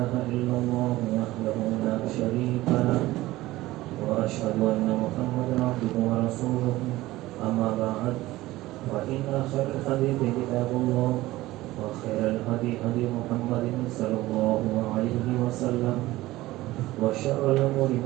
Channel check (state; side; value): quieter; left; 17.5 dB